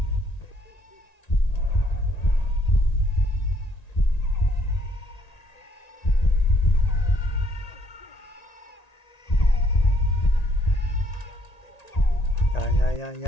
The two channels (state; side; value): late; right; 1.9 ms